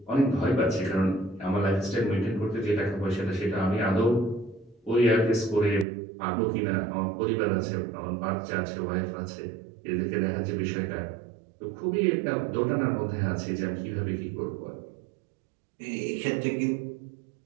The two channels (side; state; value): left; drops out; at 5.9 s